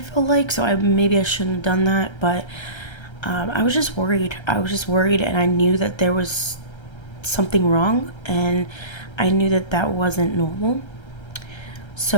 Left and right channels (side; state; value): right; late; 1.3 ms